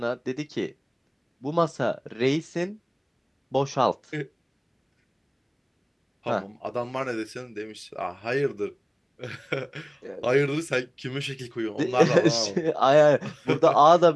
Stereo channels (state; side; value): identical; both; correlation 1.00